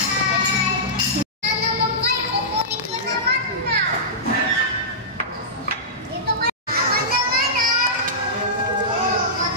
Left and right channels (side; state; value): both; normal; correlation -0.16